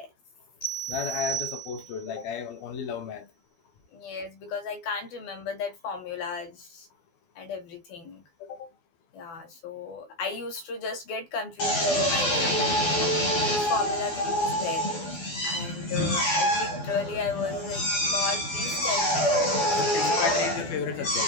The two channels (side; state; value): right; late; 12 ms